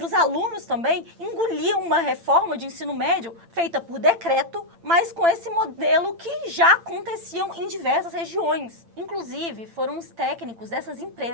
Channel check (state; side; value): late; left; 8.9 ms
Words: os alunos também engolir uma reforma de ensino médio feita por decreto, mas com esse modelo que já aconteciam em diversas regiões. Inclusive, foram os técnicos dessas